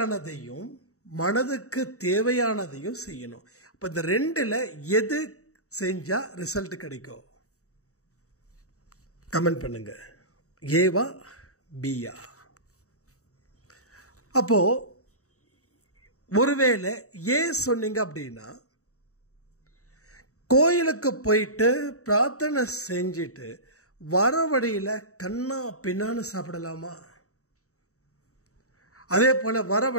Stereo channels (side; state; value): right; late; 0.65 ms